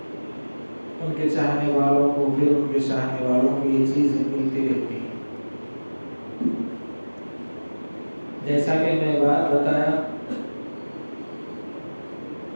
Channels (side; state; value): both; inverted; correlation -1.00